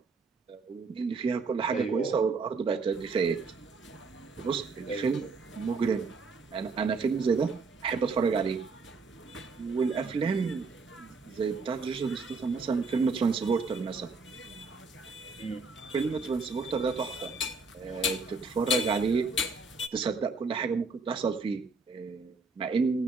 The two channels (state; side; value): quieter; left; 4.1 dB